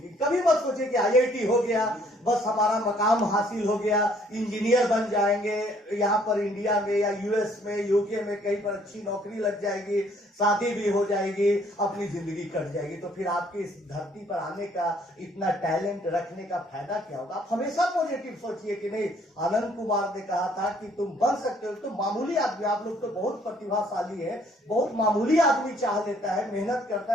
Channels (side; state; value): both; normal; correlation 0.63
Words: कभी मत सोचे कि आईआईटी हो गया बस हमारा मकाम हासिल हो गया, इंजीनियर बन जाएंगे, यहाँ पर इंडिया में या यूएस में, यूके में कहीं पर अच्छी नौकरी लग जाएगी, शादी भी हो जाएगी, अपनी जिंदगी कट जाएगी, तो फिर आपके इस धरती पर आने का, इतना टैलेंट रखने का फायदा क्या होगा। आप हमेशा पॉजिटिव सोचिए कि नहीं, आनंद कुमार ने कहा था कि तुम बन सकते हो। तो मामूली आदमी, आप लोग तो बहुत प्रतिभाशाली है, बहुत मामूली आदमी चाह लेता है, मेहनत करता